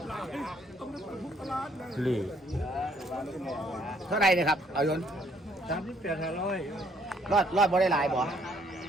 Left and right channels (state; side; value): normal; both; correlation 0.66